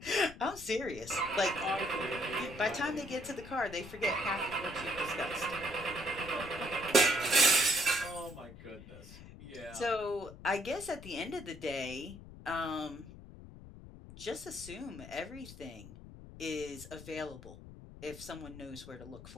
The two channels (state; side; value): noise; left; rumble, 16 dB below the sound